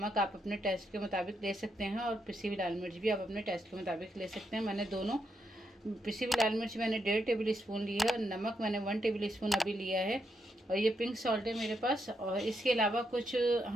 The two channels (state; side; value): normal; both; correlation 0.81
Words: आप अपने टेस्ट के मुताबिक ले सकते हैं, और पिसी हुई लाल मिर्च भी आप अपने टेस्ट के मुताबिक ले सकते हैं। मैंने दोनों पिसी हुई लाल मिर्च मैंने 1.5 टेबल स्पून ली है, और नमक मैंने 1 टेबल स्पून अभी लिया है, और ये पिंक सॉल्ट है मेरे पास। और इसके अलावा कुछ